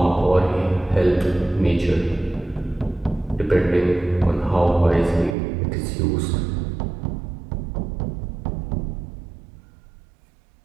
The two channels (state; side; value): drops out; left; at 5.4 s